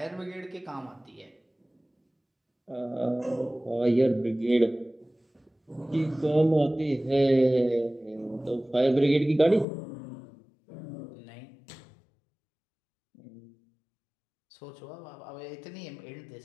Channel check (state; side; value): drops out; right; at 9.7 s